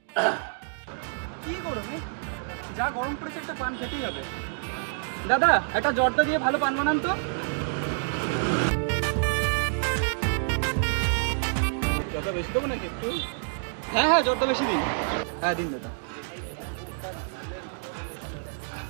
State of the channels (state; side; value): silent; left; digital silence